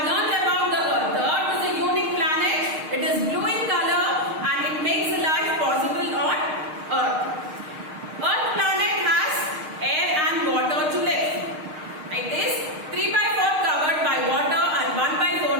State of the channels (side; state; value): left; late; 6.5 ms